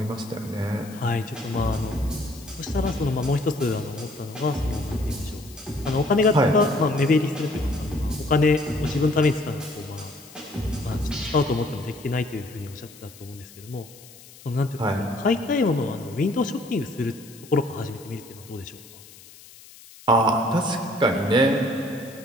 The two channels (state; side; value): noise; left; hiss, 21 dB below the sound